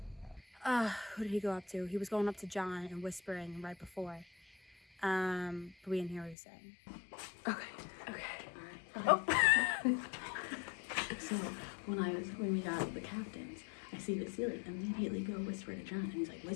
Who did he go up to? He was going up to John and whispering right before. But we didn't hear what he was saying. So when we got the captains, I see Vasily immediately go whisper to John, and he's like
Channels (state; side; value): drops out; right; at 6.4 s